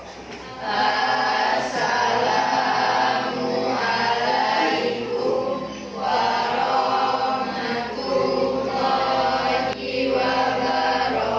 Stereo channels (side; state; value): both; identical; correlation 1.00